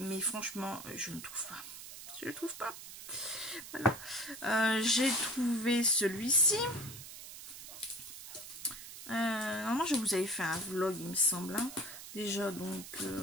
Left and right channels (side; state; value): right; noise; hiss, 12 dB below the sound